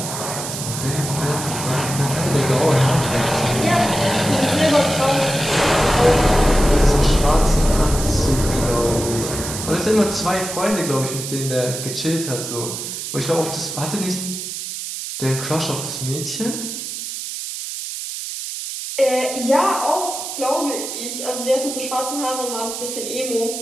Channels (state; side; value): noise; right; hiss, 6 dB below the sound